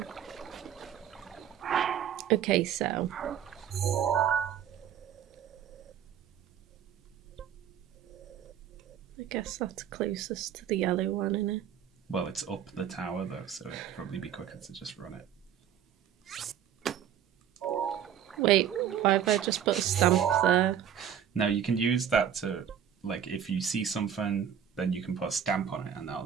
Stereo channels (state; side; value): quieter; left; 9.2 dB